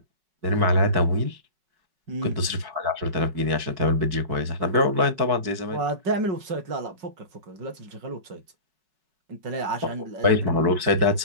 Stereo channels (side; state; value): left; late; 5.3 ms